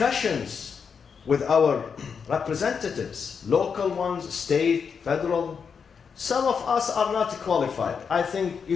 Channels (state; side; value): quieter; right; 6.3 dB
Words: with our representatives, local ones, state, federal. Some of us are not qualified. I think you